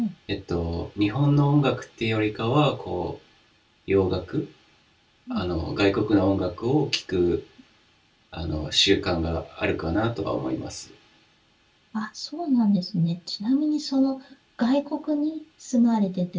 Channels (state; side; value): identical; both; correlation 1.00